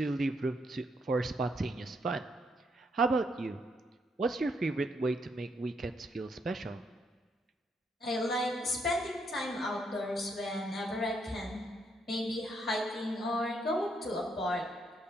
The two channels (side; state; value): both; normal; correlation 0.75